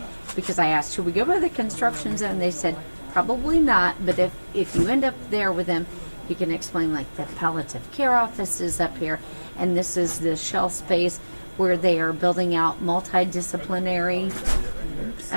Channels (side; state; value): both; inverted; correlation -1.00